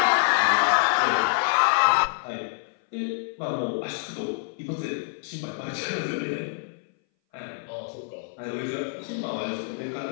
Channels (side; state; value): right; silent; 59 dB below the other